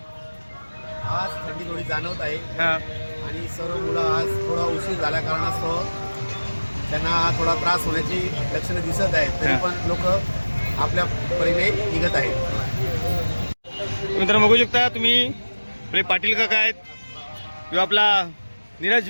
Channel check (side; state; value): both; inverted; correlation -1.00